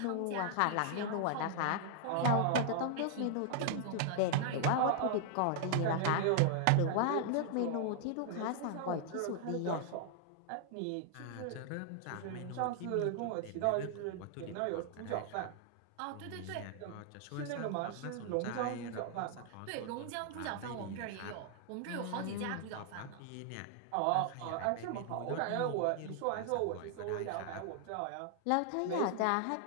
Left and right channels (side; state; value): both; different; correlation 0.00